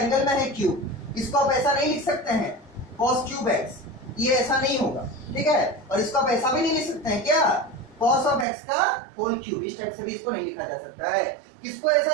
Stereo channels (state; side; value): drops out; left; at 8.5 s